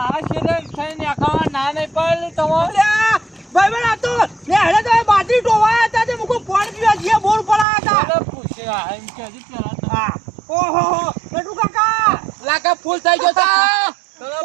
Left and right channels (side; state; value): left; drops out; at 7.7 s